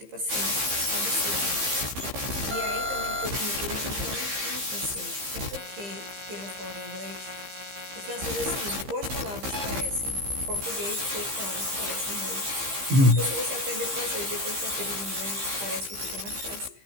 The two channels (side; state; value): left; late; 15 ms